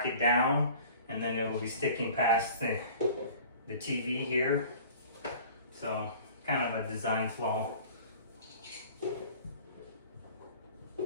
down, and then it will be sticking past the TV here. So kind of a design flaw.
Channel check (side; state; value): both; inverted; correlation -0.45